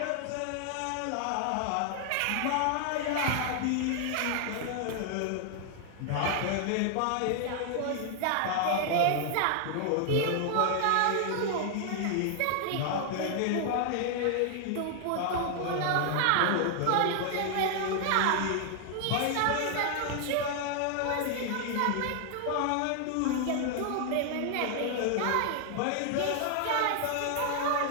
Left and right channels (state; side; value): different; both; correlation 0.00